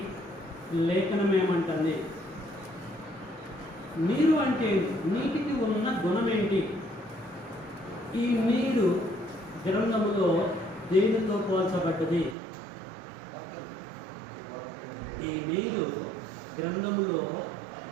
లేఖనం ఏమంటుంది? నీరు అంటే నీటికి ఉన్న గుణం ఏంటి? ఈ నీరు గ్రంథములో దేనితో పోల్చబడ్డది? ఈ నీరు గ్రంథములో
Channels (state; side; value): drops out; left; at 12.4 s